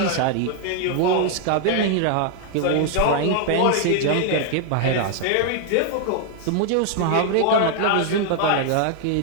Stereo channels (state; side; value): different; both; correlation 0.00